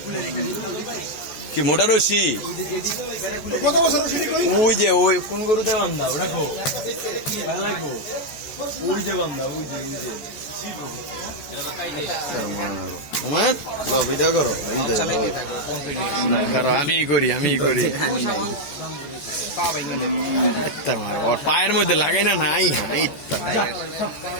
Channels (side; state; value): right; late; 14 ms